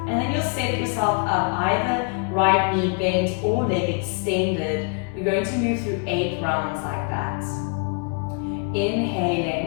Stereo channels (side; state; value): right; quieter; 36.1 dB